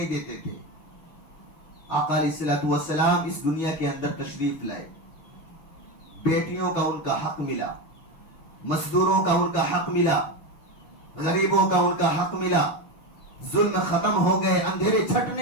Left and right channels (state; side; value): late; right; 6.5 ms